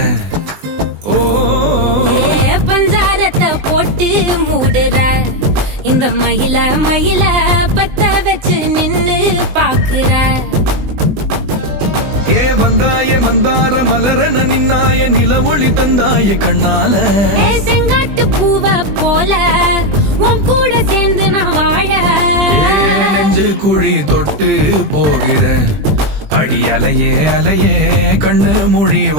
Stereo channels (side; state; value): left; late; 20 ms